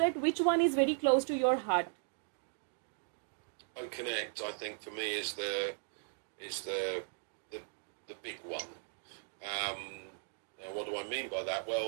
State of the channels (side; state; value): left; silent; digital silence